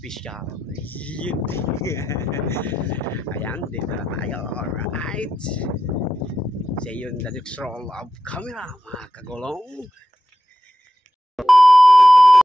Ayan, dito na tayo. Alright. See you in the next roll of camera, mga kagulong.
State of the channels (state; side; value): normal; both; correlation 0.89